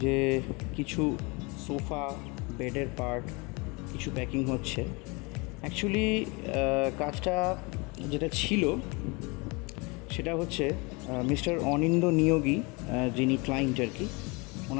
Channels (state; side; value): quieter; right; 28.1 dB